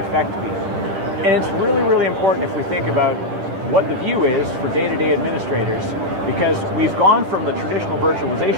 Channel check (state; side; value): late; left; 10 ms